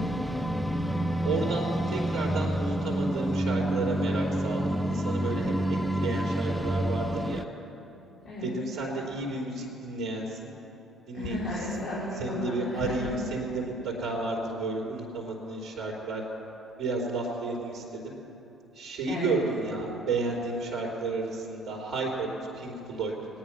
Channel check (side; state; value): both; normal; correlation 0.69